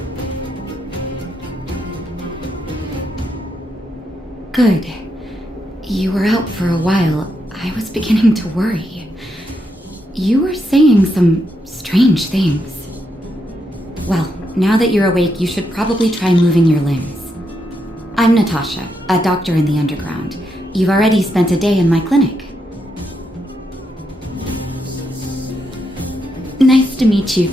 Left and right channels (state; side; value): normal; both; correlation 0.81